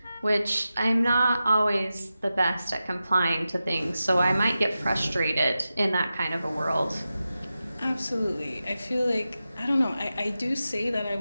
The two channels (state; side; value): inverted; both; correlation -0.93